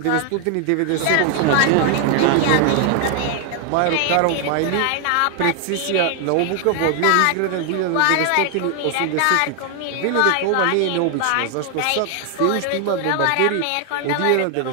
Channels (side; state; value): both; different; correlation 0.00